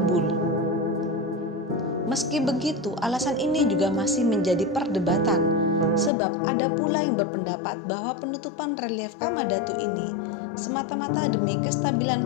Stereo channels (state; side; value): drops out; right; at 6.1 s